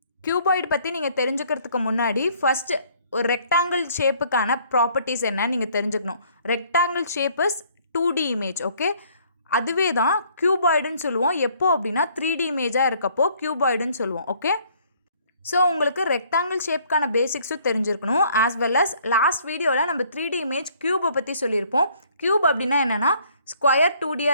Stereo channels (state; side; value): inverted; both; correlation -0.61